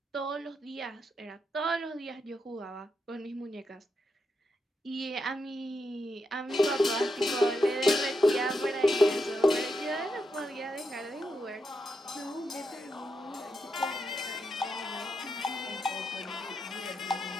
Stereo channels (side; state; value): both; normal; correlation 0.84